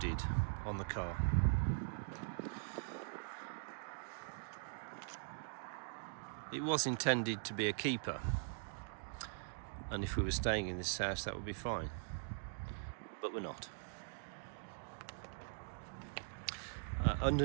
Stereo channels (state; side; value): silent; left; digital silence